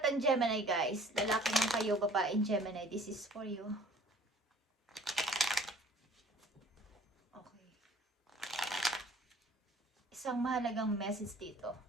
ng Gemini guys. Lalaki man kayo, babaeng Gemini. This is for you. Okay. Isang mahalagang message dito.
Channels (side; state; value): both; normal; correlation 0.51